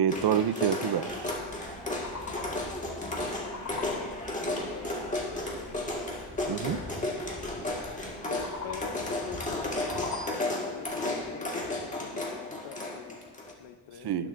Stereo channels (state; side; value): normal; both; correlation 0.14